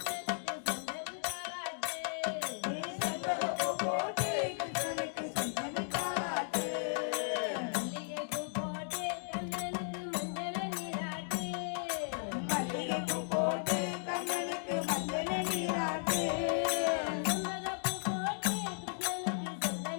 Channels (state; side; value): silent; right; digital silence